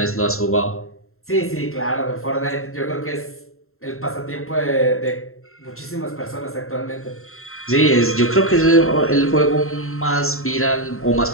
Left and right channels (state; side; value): late; right; 0.62 ms